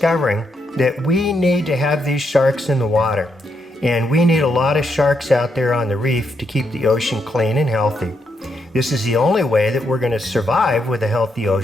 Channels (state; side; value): normal; both; correlation 0.79